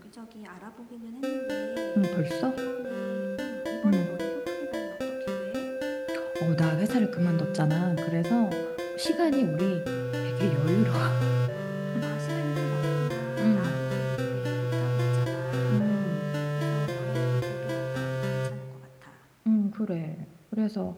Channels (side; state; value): both; identical; correlation 1.00